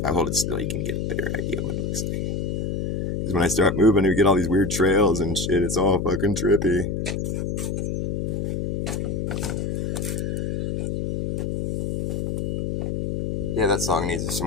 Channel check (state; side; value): noise; left; hum, 2 dB below the sound